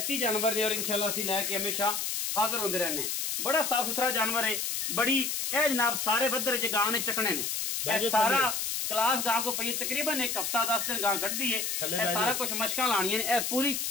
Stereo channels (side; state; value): left; noise; hiss, 1 dB below the sound